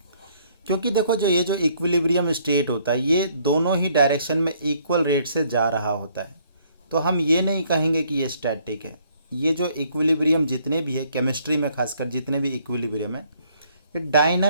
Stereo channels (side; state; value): both; inverted; correlation -0.65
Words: क्योंकि देखो जो ये जो इक्विलिब्रियम स्टेट होता है ये दोनों ही डायरेक्शन में इक्वल रेट से जा रहा होता है, तो हम ये नहीं कहेंगे कि ये स्टैटिक है। ये जो इक्विलिब्रियम जितने भी है केमिस्ट्री में, खासकर जितने भी इक्विलिब्रियम है, ये